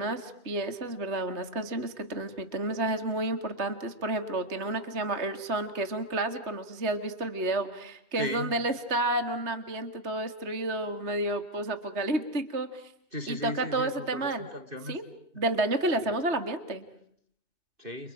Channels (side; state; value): left; late; 3.2 ms